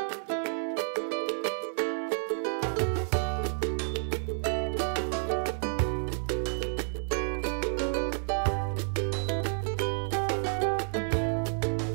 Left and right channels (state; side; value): silent; left; 58 dB below the other